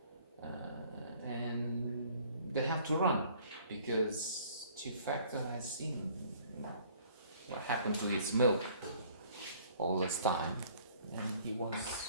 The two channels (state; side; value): inverted; both; correlation -0.56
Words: and they have to run because Chief Factor has seen what happened to his milk all this time, and he